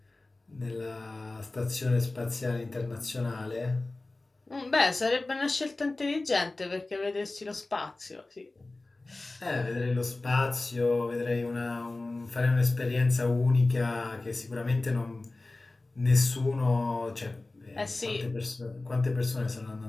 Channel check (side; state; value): right; quieter; 3.1 dB